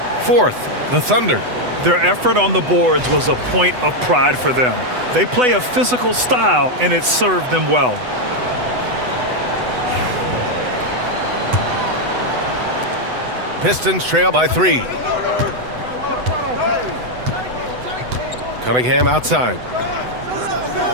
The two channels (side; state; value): left; late; 8.0 ms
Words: Fourth, the Thunder. Their effort on the boards was a point of pride for them. They play a physical style, and it served them well. Pistons trail by 3. Cunningham outside.